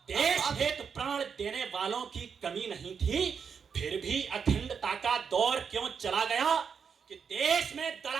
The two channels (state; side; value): quieter; left; 6.4 dB